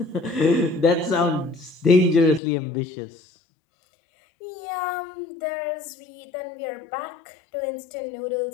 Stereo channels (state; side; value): drops out; right; at 2.4 s